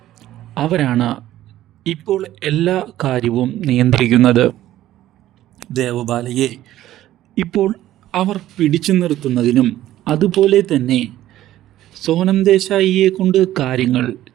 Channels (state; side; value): quieter; left; 13.8 dB